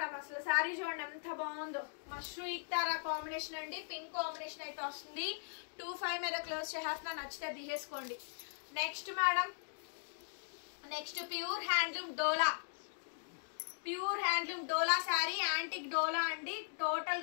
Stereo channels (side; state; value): right; silent; digital silence